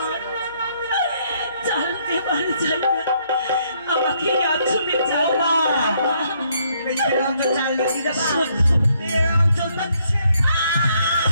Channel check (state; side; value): inverted; both; correlation -0.70